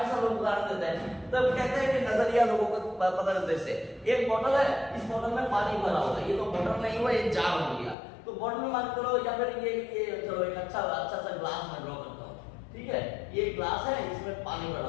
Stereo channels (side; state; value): right; drops out; at 8.0 s